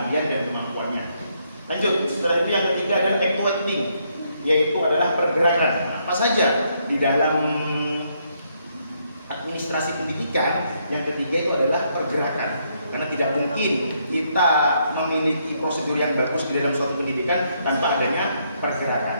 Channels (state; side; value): inverted; both; correlation -0.74